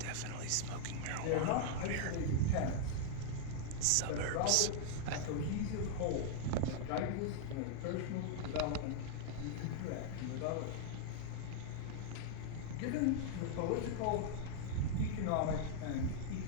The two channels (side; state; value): both; different; correlation -0.01